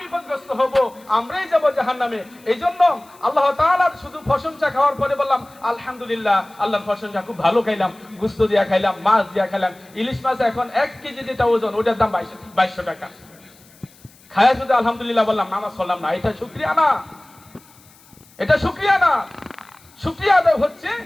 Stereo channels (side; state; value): left; noise; hiss, 27 dB below the sound